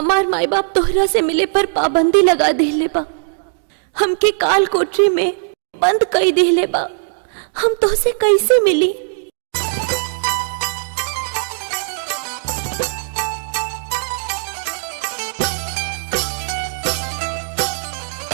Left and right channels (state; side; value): silent; left; digital silence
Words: माई बाप तोहरा से मिले पर पाबंदी लगा देले बा, हमके काल कोठरी में बंद कई देले बा, हम तोहसे कैसे मिली।